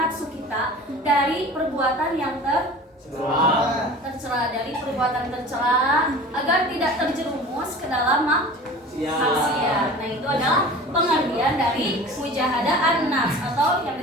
kita dari perbuatan yang tercela, dari perbuatan tercela agar tidak terjerumus ke dalam maksiat. Nah, itu adalah pengertian dari mujahadah an-nafs atau yang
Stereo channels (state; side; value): normal; both; correlation 0.39